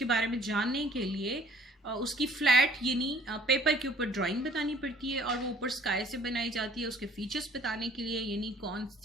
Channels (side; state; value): both; normal; correlation 0.56